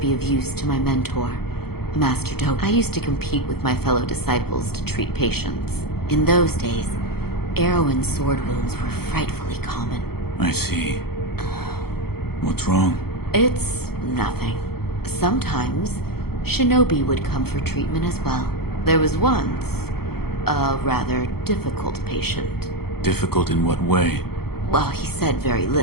of use to my mentor, Master Doke. I used to compete with my fellow disciples to treat patients. In those days, arrow and sword wounds were frightfully common. I see. What's wrong? It's nothing. Sometimes, shinobi would come for treatment as well. There was once a rather difficult patient. Difficult in what way? Well, he said very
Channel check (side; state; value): right; late; 0.95 ms